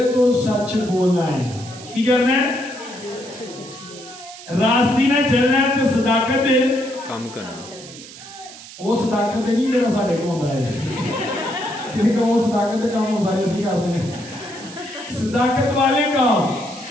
तो सच बोलना है। की करना है? रास्ती ना चलना है तो सदाकत दे काम करना। वो सदाकत नहीं जो साढ़े को होता है, क्योंकि वो सदाकत के काम सारे इसी करते हैं, सदाकत वाले काम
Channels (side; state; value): right; noise; hiss, 16 dB below the sound